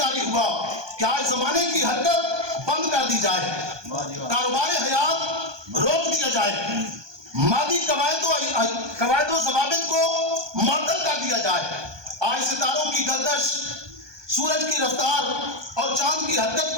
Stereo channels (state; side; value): late; left; 1.2 ms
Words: ہوا کہ آج زمانے کی حرکت بند کر دی جائے, کاروبار حیات روک دیا جائے, مادی قواعد و ضوابط کو معطل کر دیا جائے. آج ستاروں کی گردش, سورج کی رفتار اور چاند کی حرکت